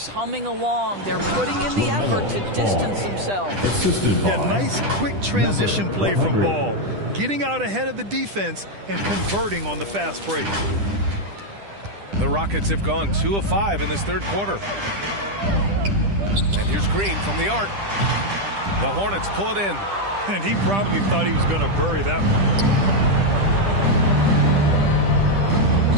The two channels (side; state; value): left; late; 10 ms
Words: humming along. They're putting in the effort to distance themselves. Assisted by A nice quick transition play from Ball, getting out ahead of the defense and converting on the fast break. The Rockets have gone 2 of 5 in this third quarter. And here's Green from the arc. The Hornets pull it in. And he probably thought he was going to bury that one.